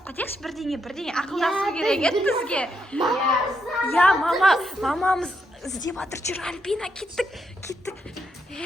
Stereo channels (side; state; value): both; normal; correlation 0.80